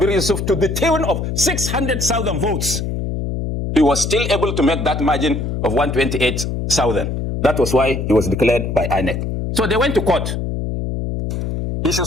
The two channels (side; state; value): left; noise; hum, 3 dB below the sound